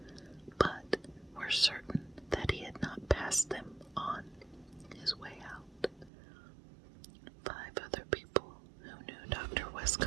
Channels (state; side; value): drops out; left; at 6.1 s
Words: but were certain that he had not passed them on his way out. 5 other people who knew Dr.